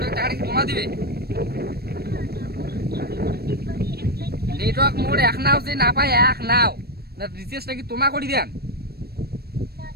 টাকাটা কি জমা দিবে? নেটওয়ার্ক মোর এক নাও যে না পায় এক নাও না, রিচার্জটা কি তোমা করে দেন?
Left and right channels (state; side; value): late; left; 0.46 ms